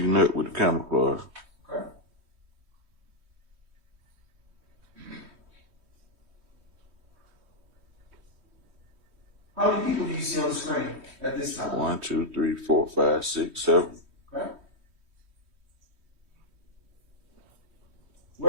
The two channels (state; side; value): late; left; 3.1 ms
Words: Nut with the camouflage. Okay. How many people do you see on the screen at this time? 1, 2, 3, 4, 5, 6, 7. Okay.